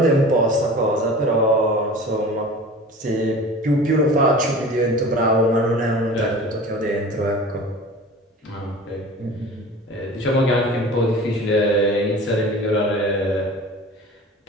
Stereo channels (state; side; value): normal; both; correlation 0.39